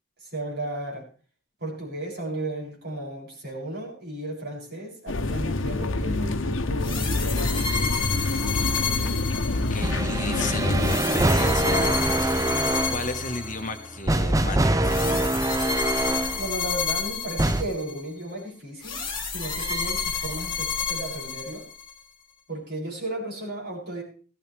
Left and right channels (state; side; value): normal; both; correlation 0.48